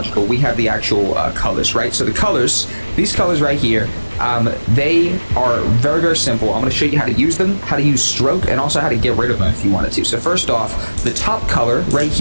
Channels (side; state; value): both; inverted; correlation -1.00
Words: we have the actual colors, right? So the colors, these colors right here, they are very, very simple. I'm going to show you how to use them, how to use stroke, and also how to get rid of them if you wanted to. So first off, the top color right